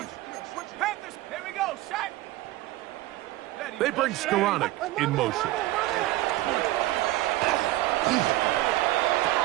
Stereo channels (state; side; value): quieter; left; 16.9 dB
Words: They bring Skoranek in motion.